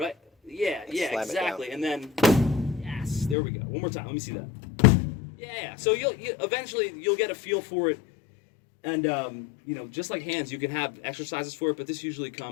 Yeah, exactly. And then, yes, there we go. One more time. Let me see that. Yeah. So you'll eventually get a feel for it, and you know, just like hands, you can have exercises for it, but this usually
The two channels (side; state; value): right; drops out; at 3.4 s